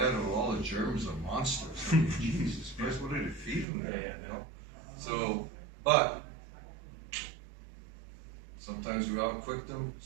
or all the Germans are monsters. I mean, Jesus Christ, what are they feeding them? You know? So, but sometimes we outquicked them,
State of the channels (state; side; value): drops out; left; at 3.7 s